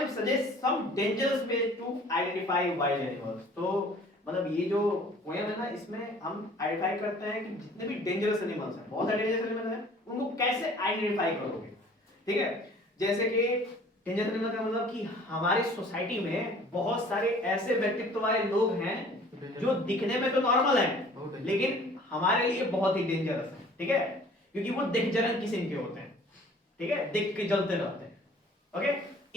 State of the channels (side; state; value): both; normal; correlation 0.51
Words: suggest some dangerous ways to identify wild animals. तो मतलब ये जो पोएम है ना, इसमें हम आइडेंटिफाई करते हैं कि जितने भी डेंजरस एनिमल्स हैं, बहुत सारे डेंजरस एनिमल्स हैं, उनको कैसे आइडेंटिफाई करोगे। ठीक है, जैसे कि डेंजरस एनिमल का मतलब कि हमारी सोसाइटी में बहुत सारे ऐसे व्यक्तित्व वाले लोग हैं जो दिखने में तो नॉर्मल हैं लेकिन हमारे लिए बहुत ही डेंजरस हैं। ठीक है, क्योंकि वो दिग्जरन किस्म के होते हैं, ठीक है, दिख के जलते रहते हैं।